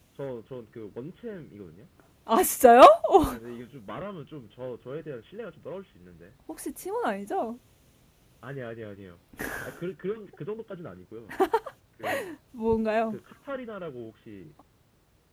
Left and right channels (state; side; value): identical; both; correlation 1.00